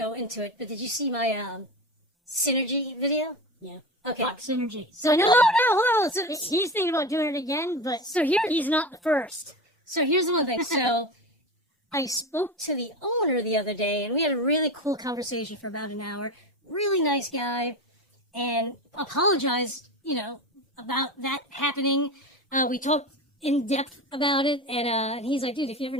into it, but did you see my Synergy video? Yeah. Okay. Fuck Synergy. So no, hold on. So he's thinking about doing it again, but so here he's not the first. So here's one thing. So I spoke to the owner the other day, and we had a really cool conversation for about an hour. Really nice guy, and apologized, about that happening. We talked in depth about it, and he's like, dude, if you ever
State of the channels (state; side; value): normal; both; correlation 0.25